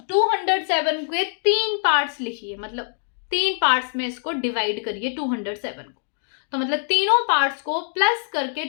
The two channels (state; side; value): silent; right; digital silence